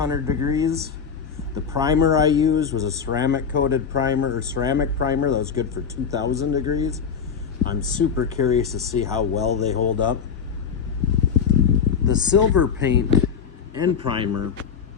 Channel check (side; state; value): right; quieter; 6.7 dB